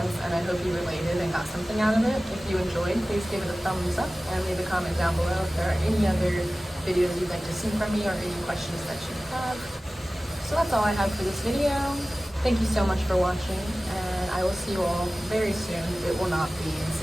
and I hope you related and got something out of it. If you enjoyed, please give it a thumbs up and leave a comment down below if there are any other videos you'd like to see from me or any questions that you have. So that's all I have for this video. Thank you so much for watching, and I will see you all very soon. It will not be in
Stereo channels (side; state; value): both; normal; correlation 0.96